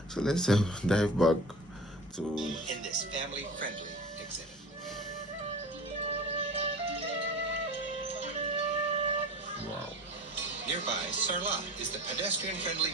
So let's dive back to In this family-friendly exhibit. wow. Nearby, Sarlat is the pedestrian-friendly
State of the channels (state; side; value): normal; both; correlation 0.36